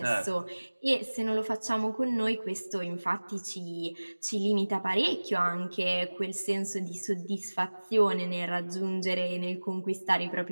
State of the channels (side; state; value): both; inverted; correlation -1.00